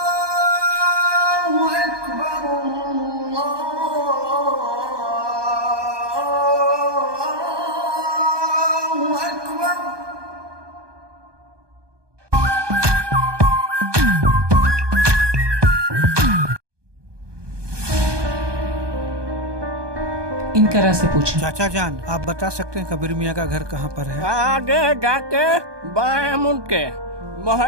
अकबर, अल्लाहु अकबर। इनकरा से पूछें। चाचा जान, आप बता सकते हैं कबीर मियाँ का घर कहाँ पर है? आगे जाके बाएं मुड़ के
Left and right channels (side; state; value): left; late; 1.2 ms